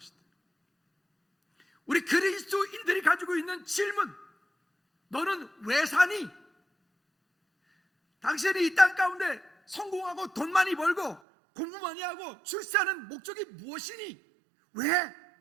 우리 그리스도인들이 가지고 있는 질문, 너는 왜 사니? 당신이 이 땅 가운데 성공하고 돈 많이 벌고 공부 많이 하고 출세하는 목적이 무엇이니? 왜?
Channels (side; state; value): left; drops out; at 11.2 s